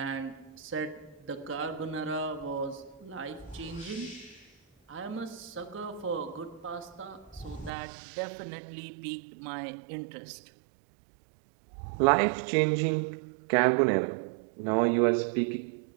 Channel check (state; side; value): drops out; left; at 7.7 s